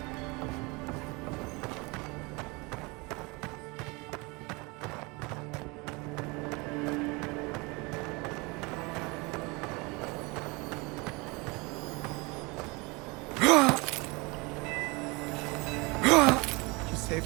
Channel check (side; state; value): left; quieter; 26.8 dB